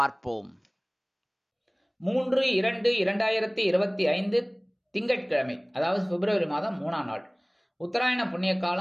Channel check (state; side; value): identical; both; correlation 1.00